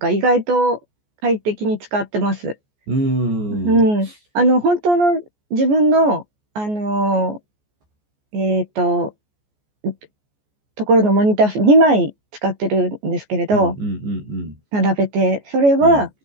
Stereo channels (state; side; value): late; left; 14 ms